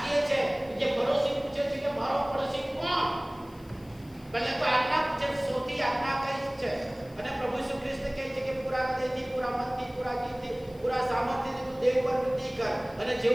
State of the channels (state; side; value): noise; left; hiss, 27 dB below the sound